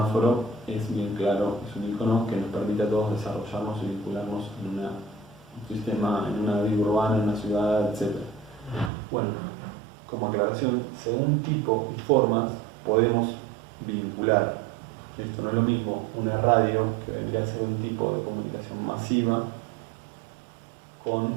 es bien claro, es un icono que nos permite a todos desarrollarnos y vincularnos en un sistema, en una vida urbana, en una ciudad, etc. Bueno, como aclaración, según tipo y formas podemos vincular. Esto no es lo mismo una radio, que vendría a ser un tipo de comunicación masiva,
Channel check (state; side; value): drops out; left; at 8.9 s